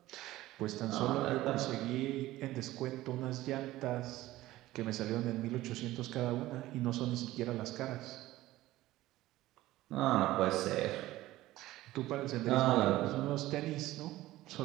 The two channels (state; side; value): quieter; left; 16.5 dB